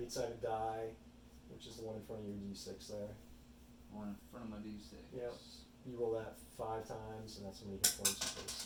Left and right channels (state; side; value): identical; both; correlation 1.00